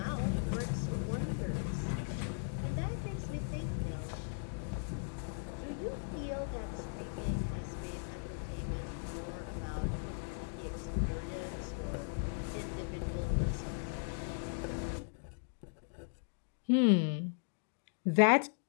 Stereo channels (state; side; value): silent; right; digital silence